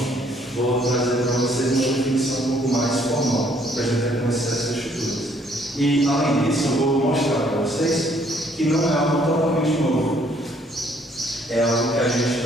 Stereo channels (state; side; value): normal; both; correlation 0.64